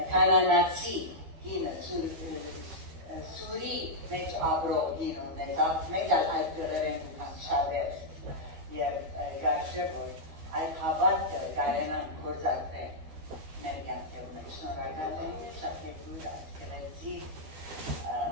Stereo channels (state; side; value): late; left; 12 ms